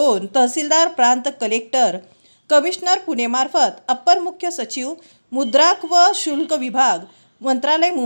तहसीलदार, प्रांत कलेक्टर, कमिशनर पुणे मार्फत अप्पर मुख्य सचिव मुद्रांक व शुल्क विभाग मंत्रालय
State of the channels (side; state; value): both; inverted; correlation -1.00